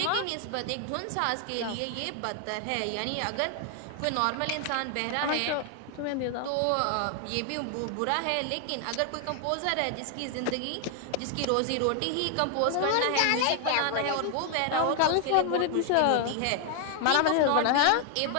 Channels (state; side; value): different; both; correlation 0.00